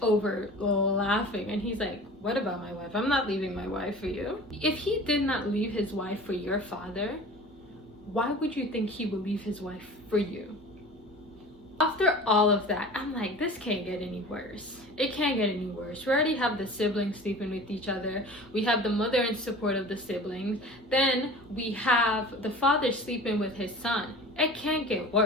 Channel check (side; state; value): both; normal; correlation 0.39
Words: over laughing, and he's like, what about my wife? I'm not leaving my wife for you. If he did not leave his wife for your father, why would you think he would leave his wife for you? After all of that, I'm like, this can't get any worse. It can't get any worse. We already have the siblings sleeping with each other. We have the mother in support of the siblings. Then we have the father sleeping with his son. It can't get